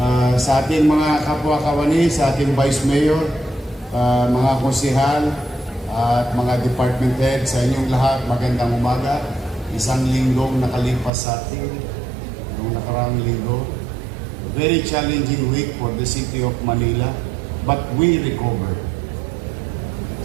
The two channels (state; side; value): drops out; left; at 11.1 s